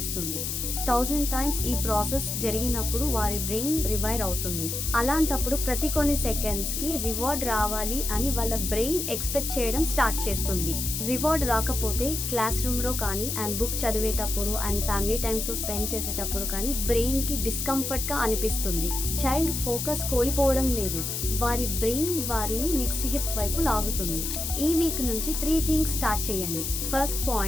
1000 టైమ్స్ ఈ ప్రాసెస్ జరిగినప్పుడు వారి బ్రెయిన్ రివైర్ అవుతుంది. అలాంటప్పుడు ప్రతి కొన్ని సెకండ్స్కి రివార్డ్ రావాలి అని వాళ్ళ బ్రెయిన్ ఎక్స్పెక్ట్ చేయడం స్టార్ట్ చేస్తుంది. రివార్డ్ రాకపోతే క్లాస్ రూమ్లో కానీ అండ్ బుక్ చదివేటప్పుడు అండ్ ఫ్యామిలీ టైంతో స్పెండ్ చేసేటప్పుడు కానీ బ్రెయిన్కి డిస్కంఫర్ట్గా అనిపిస్తుంది. చైల్డ్ ఫోకస్ కోల్పోవడం లేదు, వారి బ్రెయిన్ వారిని నెక్స్ట్ హిప్ వైపు లాగుతుంది. ఈ వీక్ నుంచి 3 థింగ్స్ స్టార్ట్ చేయండి. First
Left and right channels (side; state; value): left; noise; hiss, 3 dB below the sound